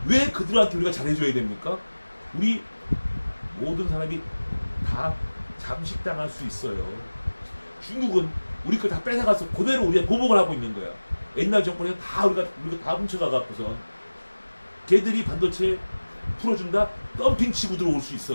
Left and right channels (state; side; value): inverted; both; correlation -1.00